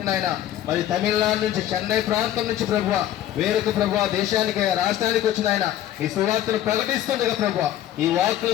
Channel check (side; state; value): right; quieter; 12.4 dB